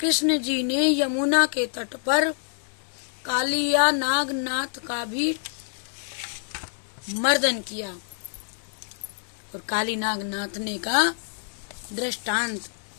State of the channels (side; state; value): right; silent; digital silence